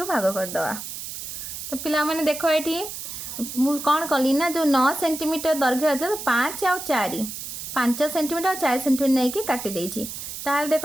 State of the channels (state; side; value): noise; right; hiss, 8 dB below the sound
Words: भाग कर दवा। तो पिला माने देखो ये कौन कली ना जो 9 सेंटीमीटर दैर्घ्य अच्छे तो 5 और 4 5 सेंटीमीटर 4 सेंटीमीटर नहीं कि काटी देछि। ताल